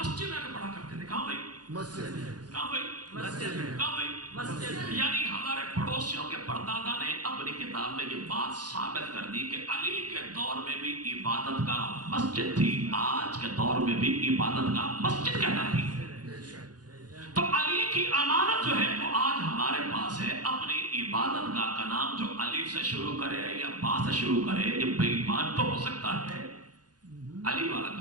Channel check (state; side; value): late; left; 0.69 ms